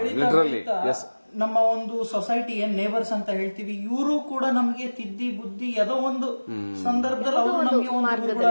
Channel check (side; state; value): both; inverted; correlation -1.00